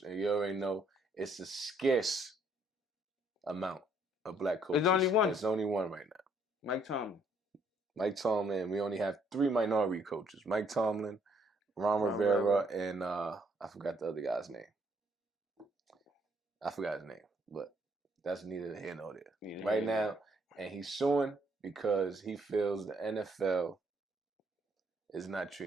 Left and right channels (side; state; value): both; normal; correlation 0.68